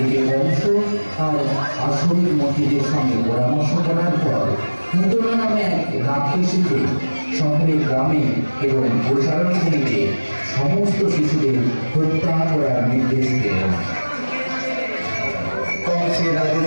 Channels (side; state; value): both; inverted; correlation -1.00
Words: বংশ আর আসরের মন্ত্রীদের সঙ্গে পরামর্শ করার পর নূতন নামে এক রাক্ষসীকে শহরের গ্রামে এবং গোচারণ ভূমিতে সমস্ত শিশুদের হত্যা করার নির্দেশ দিলেন। কংসের